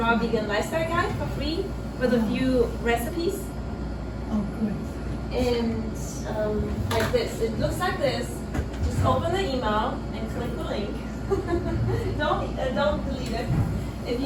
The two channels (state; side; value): identical; both; correlation 1.00